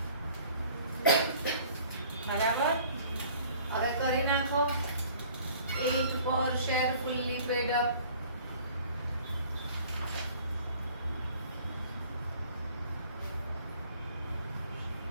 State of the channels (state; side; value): inverted; both; correlation -0.53